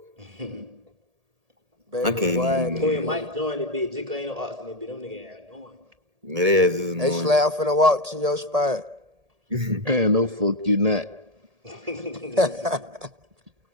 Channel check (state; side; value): late; left; 1.8 ms